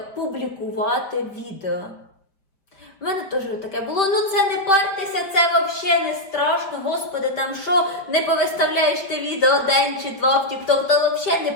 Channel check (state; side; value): late; right; 4.9 ms